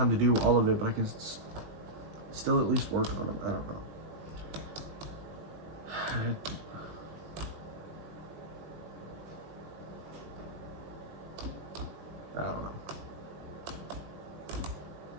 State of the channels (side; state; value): left; late; 19 ms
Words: to do all of it, but I can still at least work on them. I don't know. I don't know.